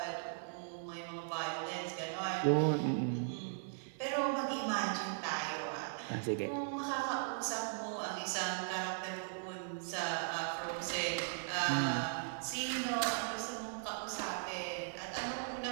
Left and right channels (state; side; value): silent; left; 52 dB below the other